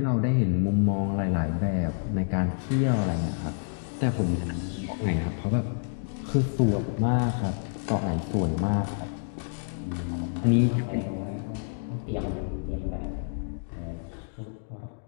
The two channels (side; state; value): right; silent; digital silence